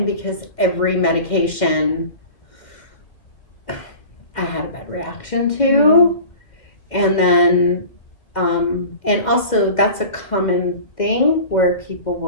because every medication I had a bad reaction to. And then, and also that's a common thing where people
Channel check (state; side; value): late; right; 2.1 ms